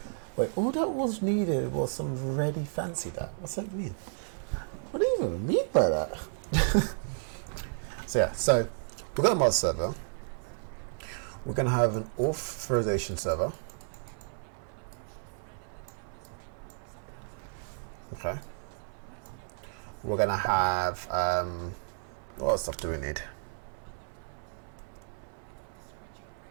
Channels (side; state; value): left; silent; 56 dB below the other